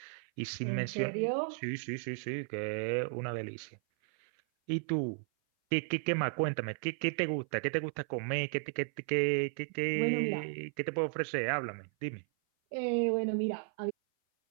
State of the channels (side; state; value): left; silent; 55 dB below the other